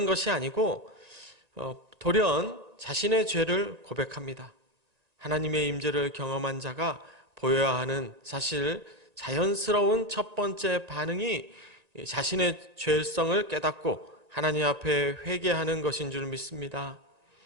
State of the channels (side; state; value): left; late; 1.9 ms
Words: 것이 아니고 돌연 자신의 죄를 고백합니다. 하나님의 임재를 경험한 자가 보여야 하는 사실 자연스러운 첫 번째 반응이 자신의 죄성을 깨닫고 하나님 앞에 회개하는 것인 줄 믿습니다.